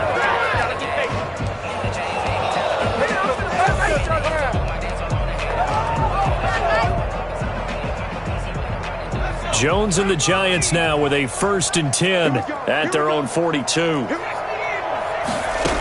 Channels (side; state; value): both; identical; correlation 1.00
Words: Jones and the Giants now with a 1st and 10 at their own 42.